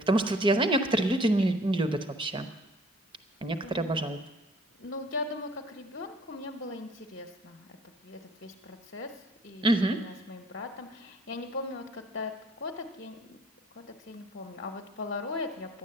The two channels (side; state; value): both; normal; correlation 0.56